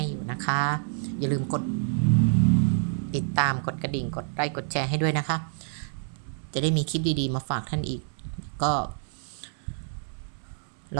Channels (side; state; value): left; silent; 60 dB below the other